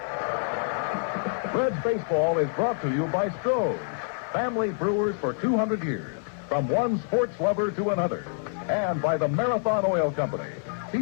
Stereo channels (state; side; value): silent; right; 60 dB below the other